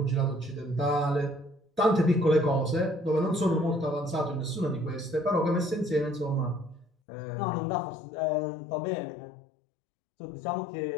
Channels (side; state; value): right; drops out; at 6.9 s